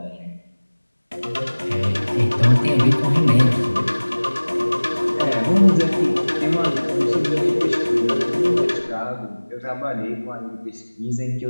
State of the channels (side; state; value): both; inverted; correlation -1.00